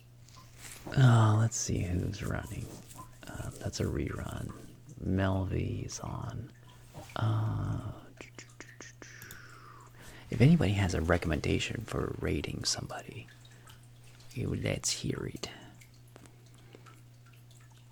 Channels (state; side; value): identical; both; correlation 1.00